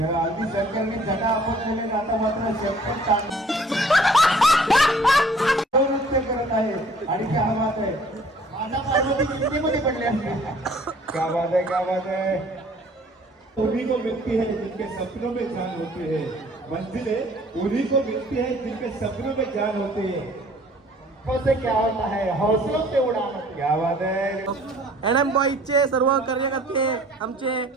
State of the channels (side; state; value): both; normal; correlation 0.55